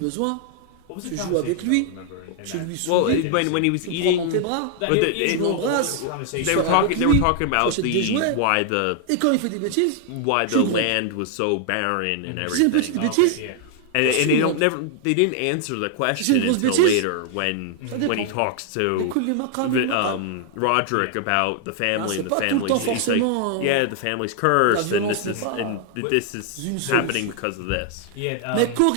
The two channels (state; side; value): different; both; correlation 0.00